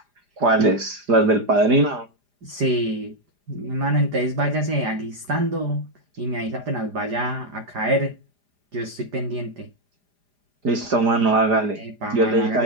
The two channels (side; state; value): left; late; 4.9 ms